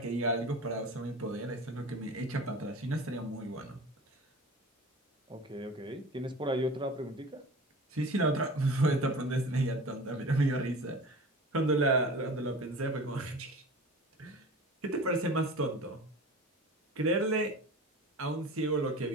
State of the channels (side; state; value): both; normal; correlation 0.37